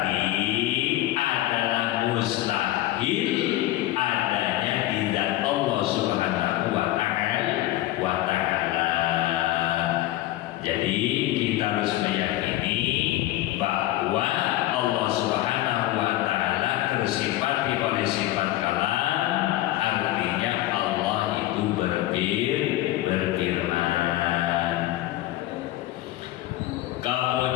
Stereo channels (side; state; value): right; quieter; 15.7 dB